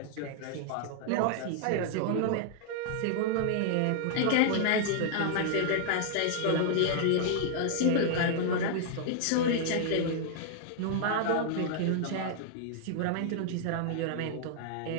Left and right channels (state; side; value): different; both; correlation -0.01